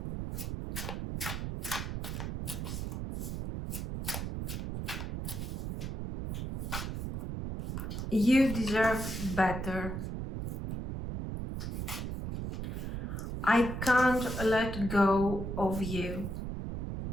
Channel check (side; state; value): right; noise; rumble, 4 dB below the sound